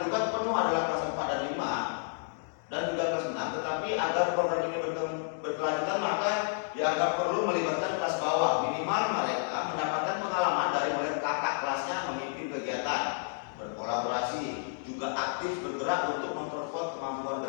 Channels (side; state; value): right; silent; digital silence